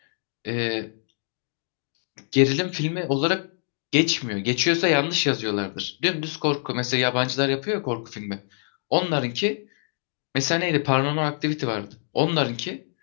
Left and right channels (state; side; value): silent; right; digital silence